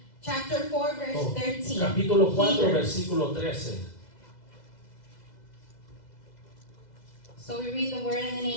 Chapter 4 verse 13. capítulo 4, Hebrews. versículo 13. So we read the word in the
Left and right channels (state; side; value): late; right; 2.0 ms